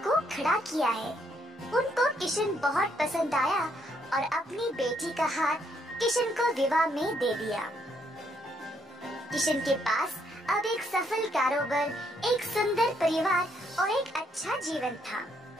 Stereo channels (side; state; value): both; normal; correlation 0.72